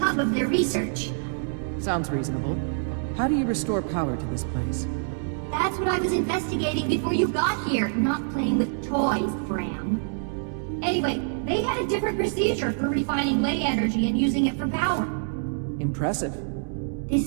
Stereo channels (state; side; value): silent; left; digital silence